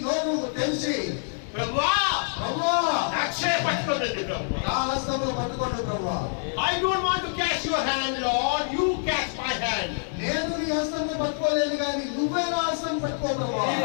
నోరు తెరిచి Prabhuva, ప్రభువా Akshay Patpatati నా Prabhuva. హస్తములు పట్టుకోండి ప్రభువా. I don't want to catch your hand, Lord. You catch my hand. నేను నీ హస్తములు పట్టుకోలేను కానీ నువ్వే నా హస్తం పట్టుకో ప్రభువా. If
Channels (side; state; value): right; silent; digital silence